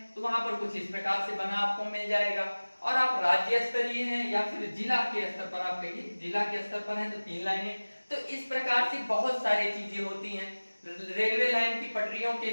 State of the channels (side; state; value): both; inverted; correlation -1.00